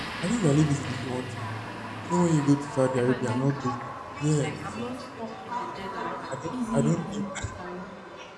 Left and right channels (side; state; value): both; identical; correlation 1.00